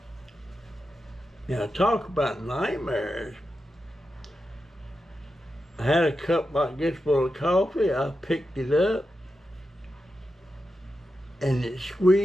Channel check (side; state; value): both; normal; correlation 0.89